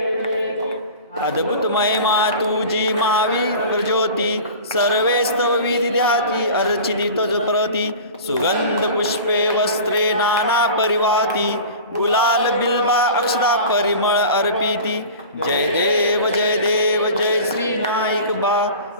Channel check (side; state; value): both; inverted; correlation -0.37